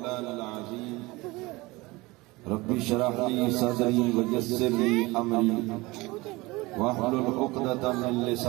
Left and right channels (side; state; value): left; quieter; 22.2 dB